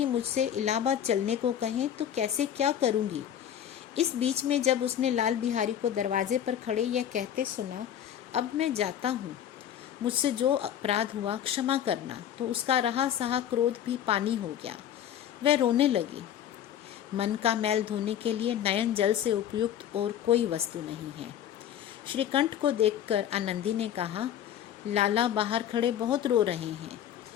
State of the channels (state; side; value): quieter; right; 10.2 dB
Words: मुझसे इलाहाबाद चलने को कहें तो कैसे क्या करूंगी। इस बीच में जब उसने लाल बिहारी को दरवाजे पर खड़े यह कहते सुना, अब मैं जाता हूँ, मुझसे जो अपराध हुआ क्षमा करना, तो उसका रहा सहा क्रोध भी पानी हो गया। वह रोने लगी। मन का मैल धोने के लिए नयन जल से उपयुक्त और कोई वस्तु नहीं है। श्रीकंठ को देखकर आनंदी ने कहा, लाला बाहर खड़े बहुत रो रहे हैं।